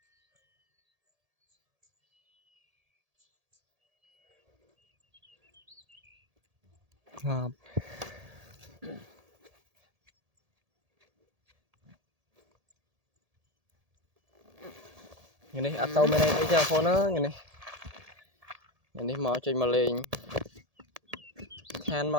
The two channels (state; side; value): late; left; 1.7 ms